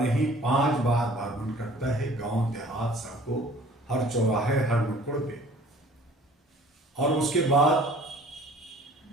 नहीं 5 बार भ्रमण करता है, गांव देहात, सड़कों, हर चौराहे, हर नुक्कड़ पे। और उसके बाद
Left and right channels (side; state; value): both; normal; correlation 0.51